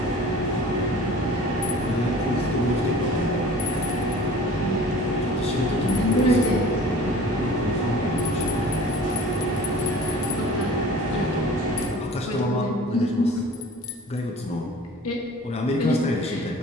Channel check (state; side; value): normal; both; correlation 0.44